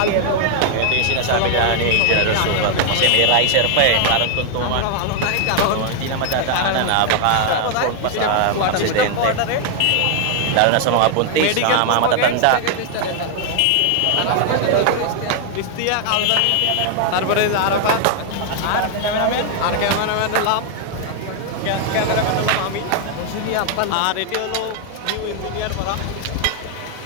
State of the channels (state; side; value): different; both; correlation 0.00